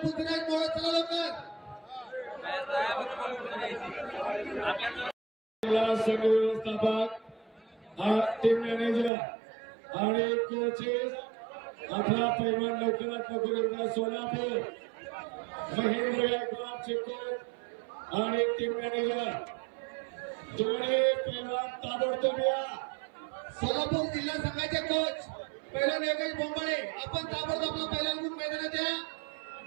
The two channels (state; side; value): drops out; left; at 9.1 s